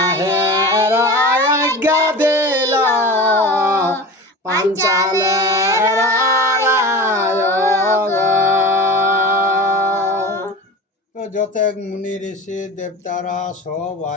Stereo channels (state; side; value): normal; both; correlation 0.33